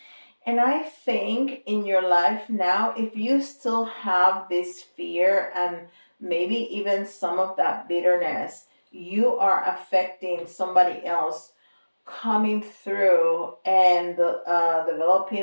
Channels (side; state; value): both; inverted; correlation -1.00